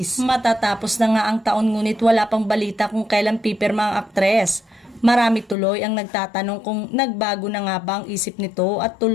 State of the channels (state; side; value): drops out; right; at 5.6 s